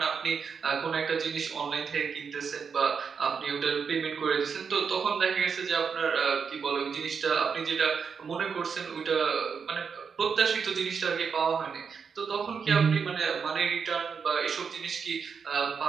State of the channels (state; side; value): quieter; left; 6.1 dB